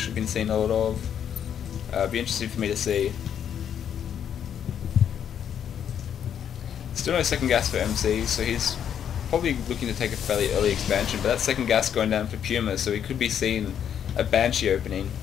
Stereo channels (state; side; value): quieter; right; 8.9 dB